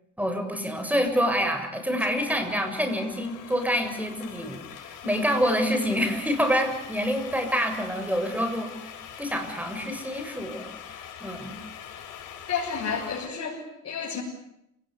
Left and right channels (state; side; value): normal; both; correlation 0.62